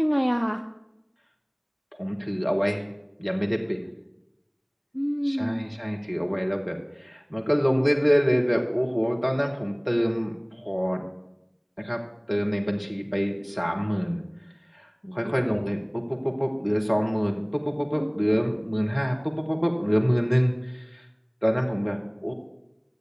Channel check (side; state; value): both; identical; correlation 1.00